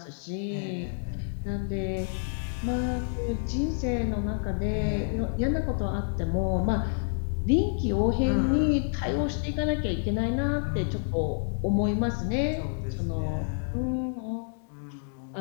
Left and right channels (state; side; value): silent; right; digital silence